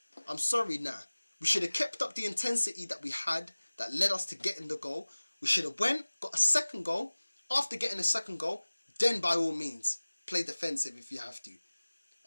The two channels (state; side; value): inverted; both; correlation -1.00